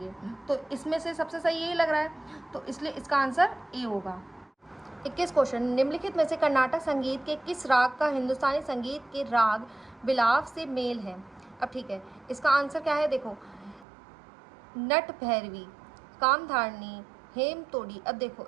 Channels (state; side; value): drops out; left; at 13.9 s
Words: तो इसमें से सबसे सही यही लग रहा है, तो इसलिए इसका आंसर ए होगा। 21 क्वेश्चन, निम्नलिखित में से कर्नाटक संगीत के किस राग का हिंदुस्तानी संगीत के राग बिलाव से मेल है। अब ठीक है, इसका आंसर क्या है, देखो नट भैरवी, कामधारणी, हेम तोड़ी। अब देखो